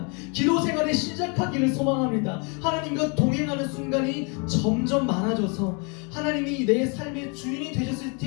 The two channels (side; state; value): right; quieter; 34.1 dB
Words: 기도 생활을 시작하기를 소망합니다. 하나님과 동행하는 순간이 점점 많아져서 하나님이 내 삶의 주인이 되셨을